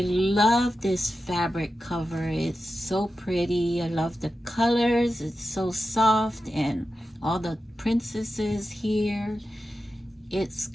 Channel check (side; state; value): both; normal; correlation 0.91